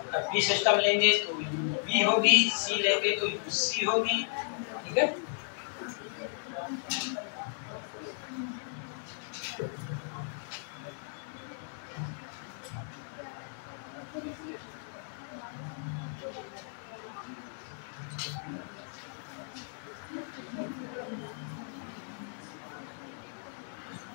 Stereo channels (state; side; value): silent; right; digital silence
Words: अब बी सिस्टम लेंगे तो बी होगी, सी लेंगे तो सी होगी। ठीक है,